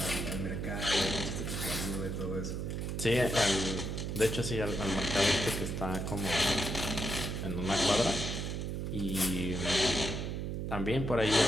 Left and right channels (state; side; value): noise; right; hum, 3 dB below the sound